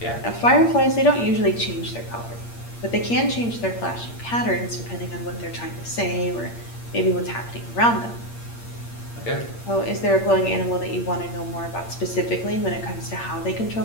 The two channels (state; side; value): late; right; 8.6 ms